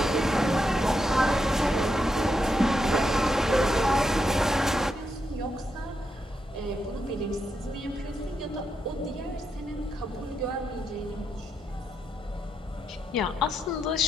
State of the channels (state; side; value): normal; both; correlation 0.82